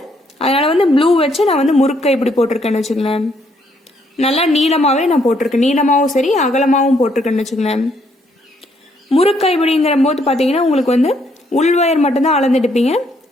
அதனால வந்து ப்ளூ வச்சு நான் வந்து முறுக்கை இப்படி போட்டிருக்கேன்னு வச்சுக்கலேன். நல்லா நீளமாகவே நான் போட்டிருக்கேன், நீளமாகவும் சரி அகலமாகவும் போட்டிருக்கேன்னு வச்சுக்கலேன். முறுக்கை இப்படிங்கிற போது பார்த்தீங்கன்னா உங்களுக்கு வந்து உள் ஒயர் மட்டும்தான் அளந்துட்டுப்பீங்க.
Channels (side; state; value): both; normal; correlation 0.71